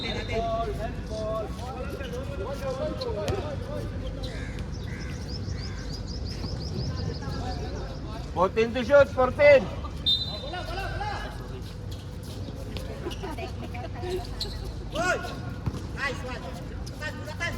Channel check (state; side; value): identical; both; correlation 1.00